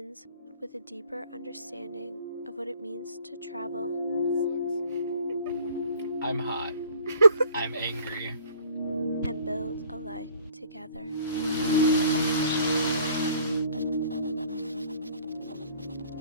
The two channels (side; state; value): both; inverted; correlation -0.54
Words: with a deeper understanding of what it means to travel. I'm hot. I'm angry. And build a life together.